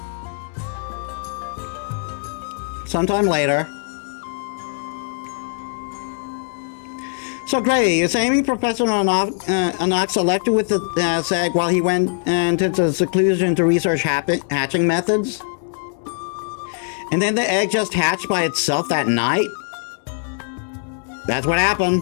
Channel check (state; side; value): silent; right; 65 dB below the other